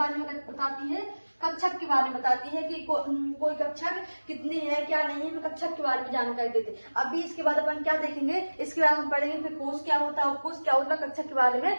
में बताती है, कक्षक के बारे में बताती है कि कोई कक्षक कितनी है क्या नहीं है, कक्षक के बारे में जानकारी देते हैं। अभी इसके बाद अपन क्या देखेंगे, इसके बाद हम पढ़ेंगे फिर कोष क्या होता है, उपकोष क्या होता है, कक्षक के बारे में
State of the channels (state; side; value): inverted; both; correlation -1.00